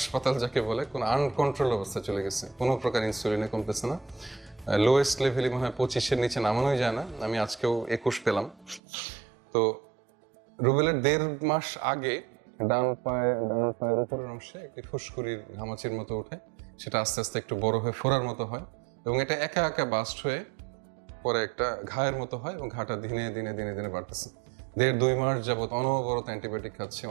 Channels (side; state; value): left; drops out; at 8.8 s